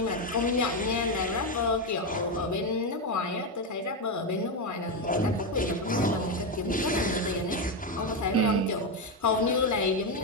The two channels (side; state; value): both; normal; correlation 0.09